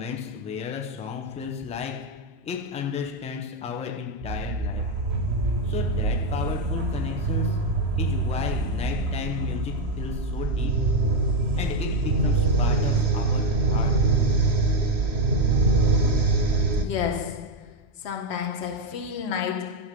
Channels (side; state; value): both; normal; correlation 0.05